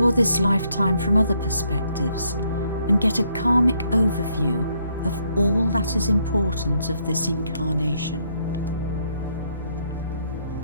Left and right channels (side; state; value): both; inverted; correlation -0.72